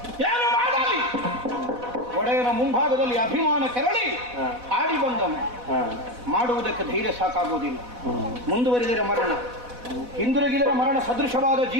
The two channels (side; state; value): left; late; 4.1 ms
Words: ಏನು ಮಾಡಲಿ? ಒಡೆಯನ ಮುಂಭಾಗದಲ್ಲಿ ಅಭಿಮಾನ ಕೆರಳಿ ಆಡಿ ಬಂದನು. ಮಾಡುವುದಕ್ಕೆ ಧೈರ್ಯ ಸಾಕಾಗುವುದಿಲ್ಲ. ಮುಂದುವರಿದರೆ ಮರಣ, ಹಿಂದಿರುಗಿದರೆ ಮರಣ ಸದೃಶವಾದ